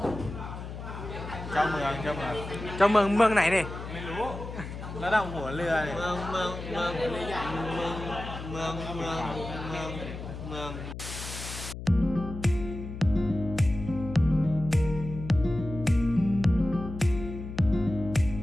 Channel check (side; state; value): left; noise; hum, 9 dB below the sound